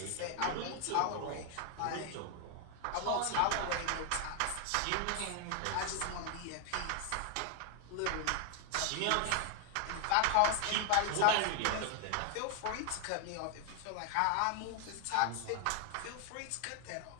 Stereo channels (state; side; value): different; both; correlation 0.00